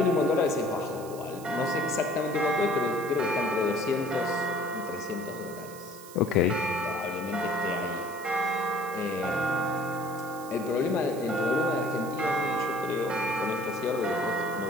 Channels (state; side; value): noise; right; hiss, 17 dB below the sound